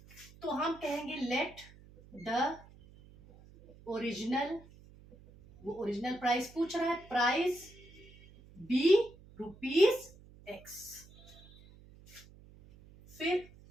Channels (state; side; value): noise; right; hum, 22 dB below the sound